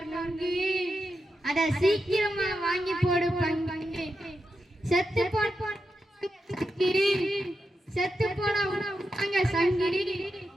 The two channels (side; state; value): both; normal; correlation 0.87